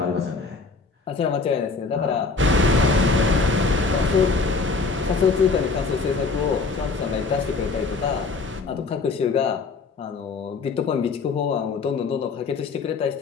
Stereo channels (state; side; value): quieter; right; 4.3 dB